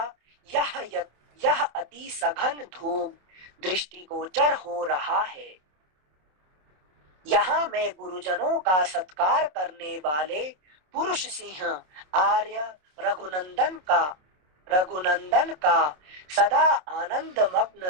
यह अति सघन धूम दृष्टिगोचर हो रहा है। यहाँ मैं गुरुजनों का सत्कार करने वाले पुरुष सिंह आर्य रघुनंदन का सदा आनंद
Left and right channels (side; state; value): left; late; 27 ms